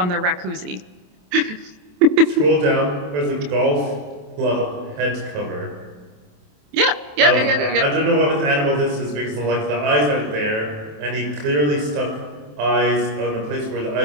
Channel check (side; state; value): left; late; 27 ms